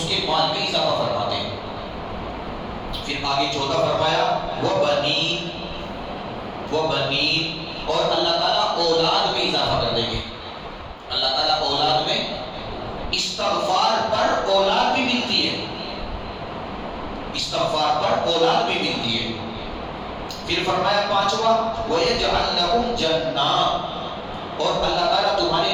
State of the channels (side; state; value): both; identical; correlation 1.00